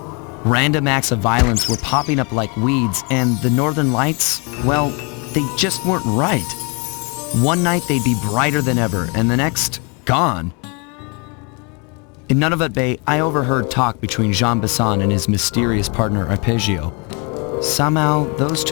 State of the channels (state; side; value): quieter; right; 32.6 dB